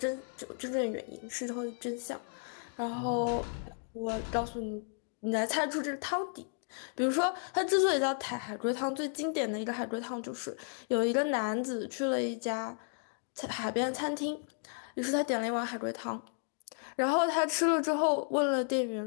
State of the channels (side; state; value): right; silent; 55 dB below the other